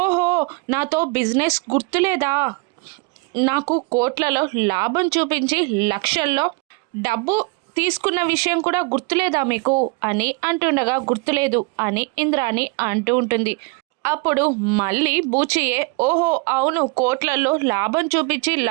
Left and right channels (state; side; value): quieter; left; 28.8 dB